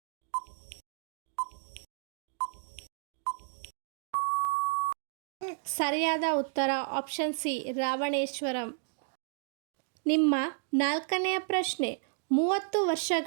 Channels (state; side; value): silent; left; digital silence